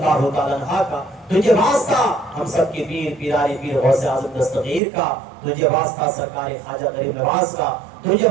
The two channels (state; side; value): drops out; left; at 4.8 s